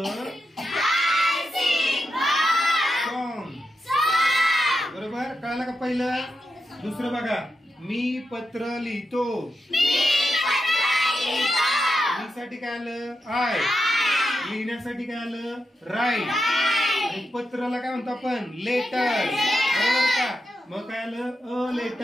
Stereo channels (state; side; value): normal; both; correlation 0.87